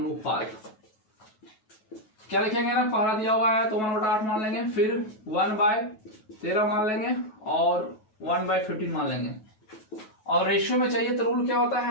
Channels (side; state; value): right; late; 9.3 ms